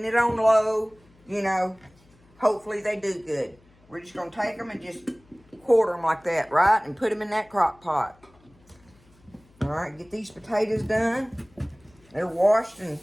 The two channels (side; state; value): left; noise; hum, 30 dB below the sound